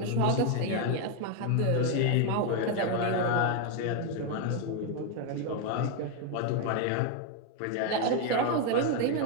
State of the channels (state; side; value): different; both; correlation 0.01